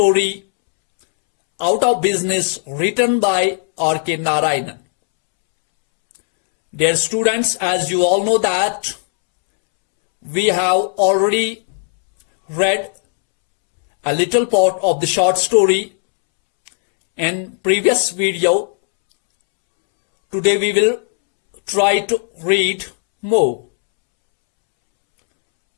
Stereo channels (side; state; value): right; silent; 69 dB below the other